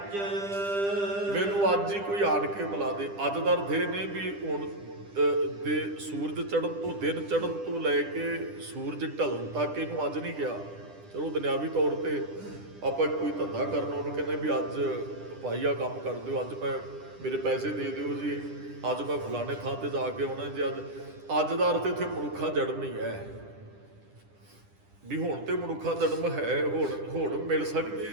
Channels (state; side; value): late; left; 10 ms